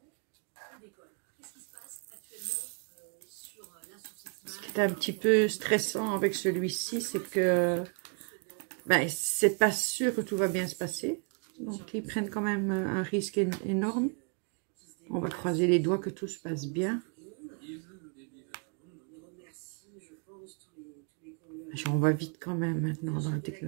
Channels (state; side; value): quieter; left; 38.8 dB